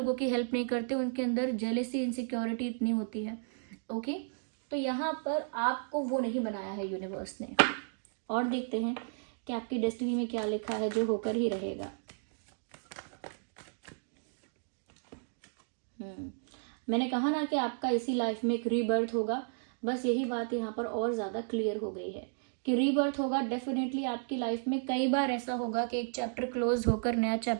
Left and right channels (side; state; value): left; silent; digital silence